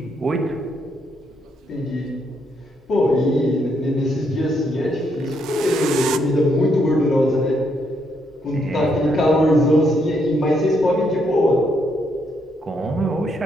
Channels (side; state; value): both; normal; correlation 0.75